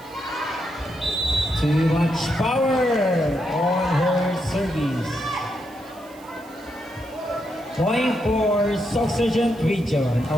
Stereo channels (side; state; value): right; noise; hiss, 25 dB below the sound